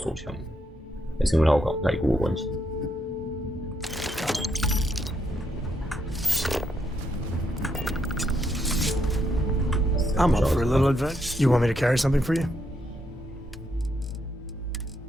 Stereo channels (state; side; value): normal; both; correlation 0.77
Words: 手枪，还是因为它有改过的关系？ I'm up for a little adventure. You want me to carry something for you?